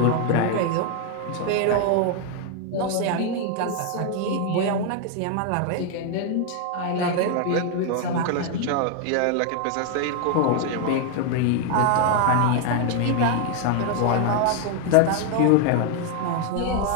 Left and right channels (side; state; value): both; different; correlation 0.00